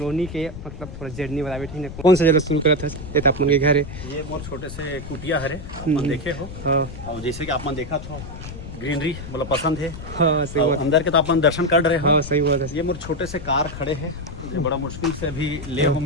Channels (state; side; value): noise; left; rumble, 11 dB below the sound